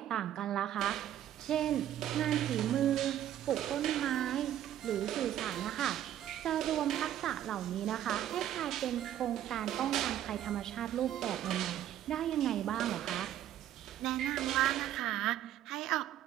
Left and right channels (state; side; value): quieter; left; 11.6 dB